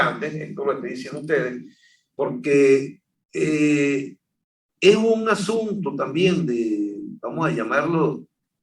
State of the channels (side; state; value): both; identical; correlation 1.00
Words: esto lo estoy diciendo a ustedes, porque es un asunto también de, vamos a llamarlo,